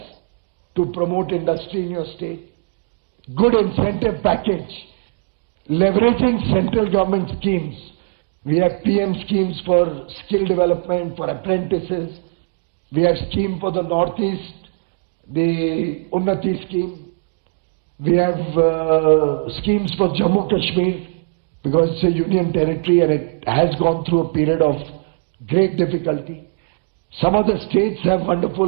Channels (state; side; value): silent; left; digital silence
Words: to promote industry in your state, good incentive package, leveraging central government schemes. We have PM schemes for skill development, for apprentices. We have scheme for the Northeast, the Unnati scheme. We have schemes for Jammu Kashmir because it's a union territory and it has gone through a period of great difficulty. Some of the states have